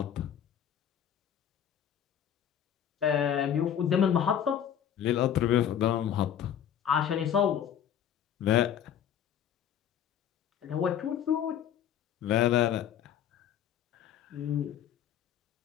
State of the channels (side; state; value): right; quieter; 9.5 dB